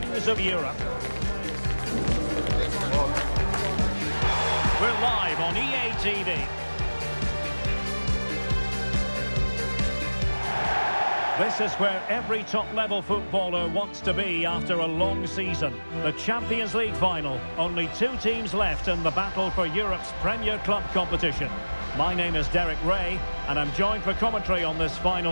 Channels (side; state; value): both; inverted; correlation -1.00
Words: of Europe? We're live on EA TV. This is where every top-level footballer wants to be after a long season. The Champions League final. Only 2 teams left in the battle for Europe's Premier Club competition. My name is Derek Ray, and I'm joined for commentary on this